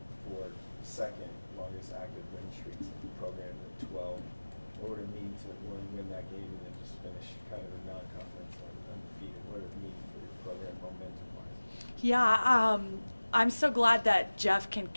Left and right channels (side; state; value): both; inverted; correlation -1.00